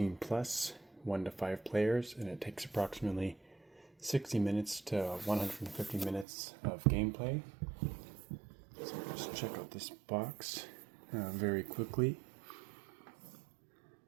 plus, 1 to 5 players, and it takes approximately 60 minutes to 150 minutes of gameplay. So let's check out this box very quickly.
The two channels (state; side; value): drops out; left; at 6.2 s